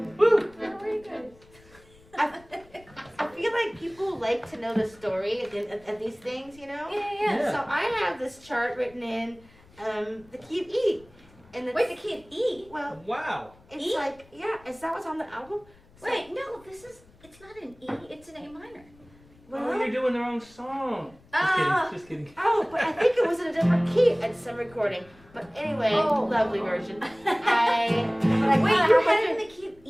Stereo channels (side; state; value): left; noise; rumble, 27 dB below the sound